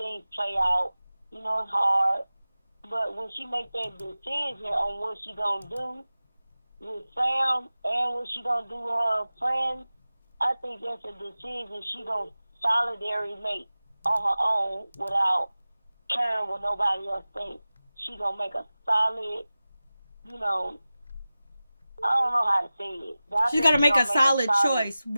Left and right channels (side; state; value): both; inverted; correlation -0.96